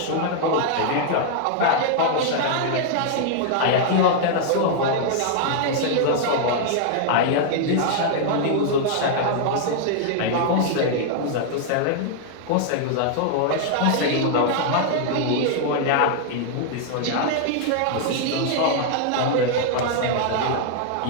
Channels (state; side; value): different; both; correlation -0.01